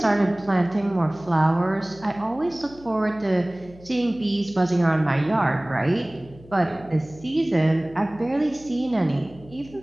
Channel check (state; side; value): noise; left; hum, 22 dB below the sound